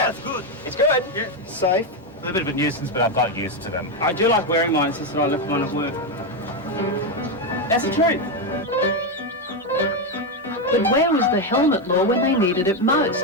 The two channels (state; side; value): normal; both; correlation 0.07